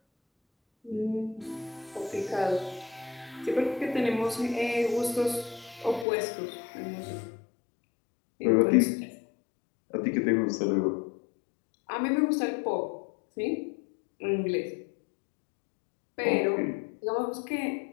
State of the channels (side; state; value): right; drops out; at 6.1 s